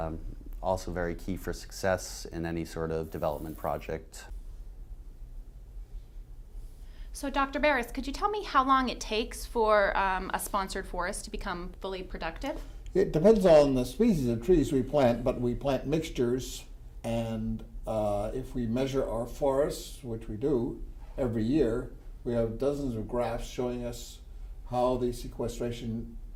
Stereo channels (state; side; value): identical; both; correlation 1.00